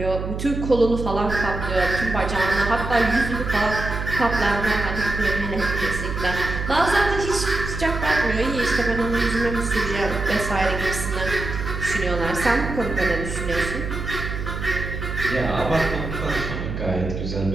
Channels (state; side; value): noise; right; hum, 5 dB below the sound